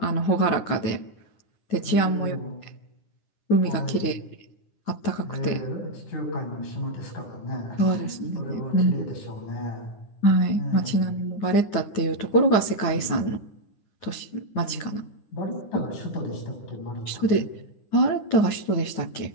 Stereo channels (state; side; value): late; right; 9.8 ms